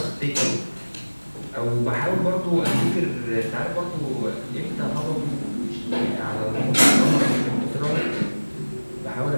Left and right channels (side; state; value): both; inverted; correlation -1.00